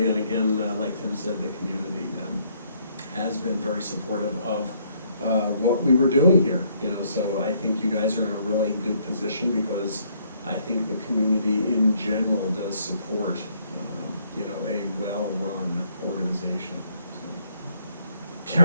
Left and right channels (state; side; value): inverted; both; correlation -0.68